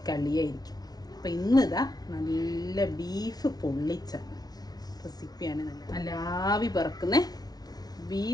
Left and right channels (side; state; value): right; late; 0.19 ms